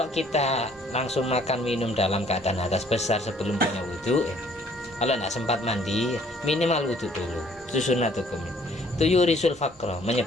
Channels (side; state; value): both; normal; correlation 0.59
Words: kita langsung makan minum dalam keadaan hadas besar sebelum punya wudhu, kalau tidak sempat mandi, minimal wudhu dulu. Itu sunat hukumnya. Itu yurisul faqra,